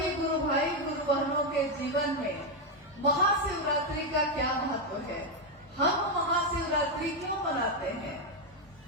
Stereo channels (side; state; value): both; normal; correlation 0.04